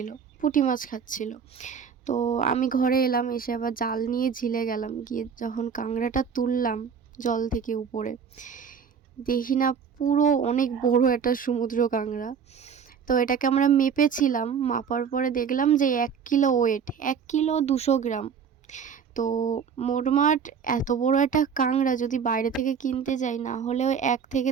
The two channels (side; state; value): left; quieter; 6.8 dB